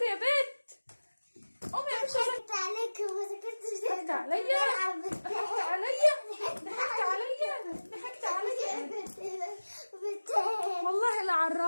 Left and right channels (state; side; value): inverted; both; correlation -1.00